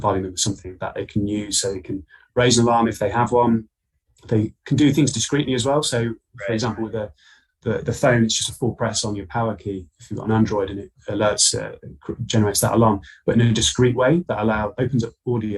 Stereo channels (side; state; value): both; identical; correlation 1.00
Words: them with something that they can use so they can raise an alarm if they have one. They can do things discreetly as well. So for example, with the phone, it's just a full press on your power key if you've got an Android, and it alerts, generates that alarm, but in a discreet way that opens up